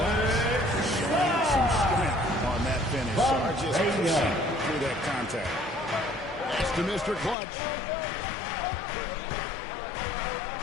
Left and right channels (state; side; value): drops out; right; at 7.4 s